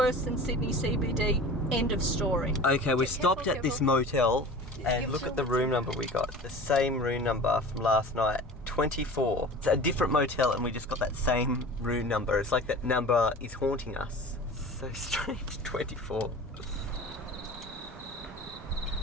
than Sydney CBD. End of story. Okay, we stopped at this motel and look at the room number we got. The same room number from last night. 24. It's a different motel and we just got that same room number. It's like that number is haunting us. So strange. 24.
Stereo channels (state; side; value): normal; both; correlation 0.38